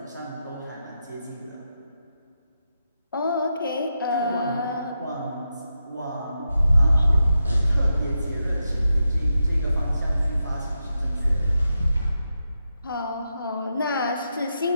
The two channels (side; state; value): both; inverted; correlation -0.87